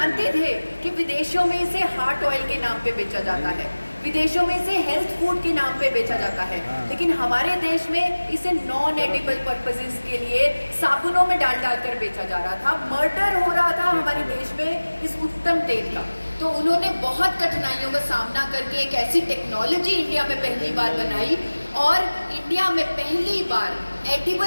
थे कि विदेशों में इसे हार्ट ऑयल के नाम पे बेचा जाता है, विदेशों में इसे हेल्थ फूड के नाम पे बेचा जाता है, लेकिन हमारे देश में इसे नॉन एडिबल पर्पसेस के लिए साबुनों में डाल कर बेचा जा रहा था। मर्डर हो रहा था हमारे देश में इस उत्तम तेल का। तो उन्होंने बहुत कठिनाइयों का सामना करके एक ऐसी टेक्नोलॉजी इंडिया में पहली बार बनाई और इंडिया में पहली बार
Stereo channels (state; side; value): inverted; both; correlation -1.00